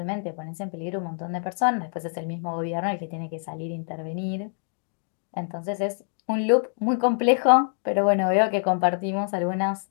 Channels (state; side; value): silent; right; digital silence